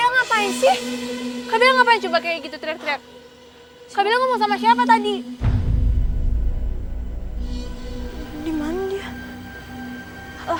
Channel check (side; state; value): both; identical; correlation 1.00